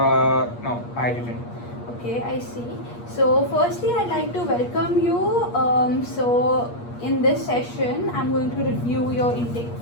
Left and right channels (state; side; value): late; right; 8.4 ms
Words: I didn't. Okay, I see. So, firstly, I'd like to welcome you. In this session, I'm going to review your intake